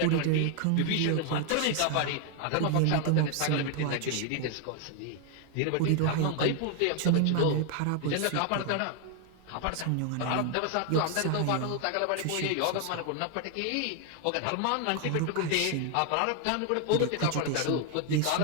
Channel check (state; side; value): different; both; correlation 0.00